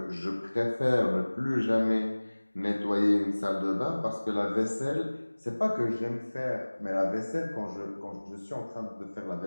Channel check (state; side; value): inverted; both; correlation -1.00